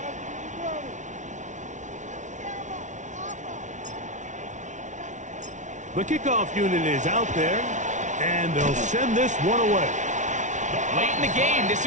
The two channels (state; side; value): late; left; 0.36 ms